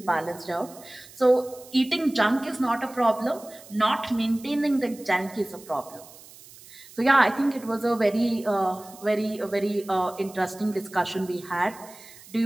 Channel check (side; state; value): right; noise; hiss, 20 dB below the sound